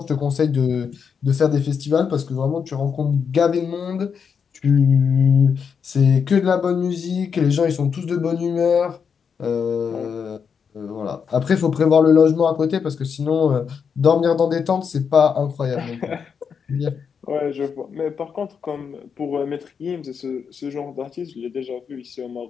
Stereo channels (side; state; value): right; quieter; 6.5 dB